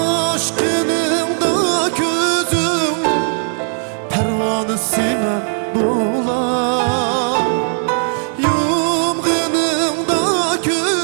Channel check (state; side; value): silent; left; 60 dB below the other